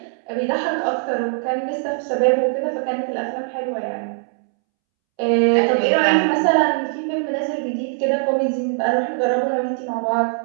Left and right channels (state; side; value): silent; left; 65 dB below the other